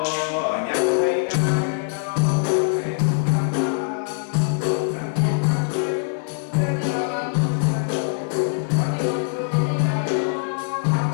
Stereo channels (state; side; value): silent; right; digital silence